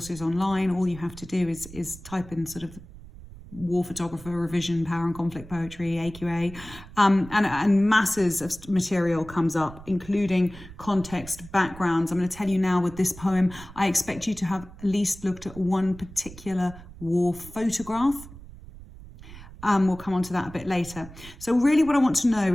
online. All you have to do is type in sort of war photographer, revision, power and conflict poetry, AQA, and masses of material comes up, including context, backgrounds. I'm going to tell you now with this poem, I expect you to have at least looked at one particular war photograph. We'll come on to that a bit later. So really what I want to know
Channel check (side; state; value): right; noise; rumble, 17 dB below the sound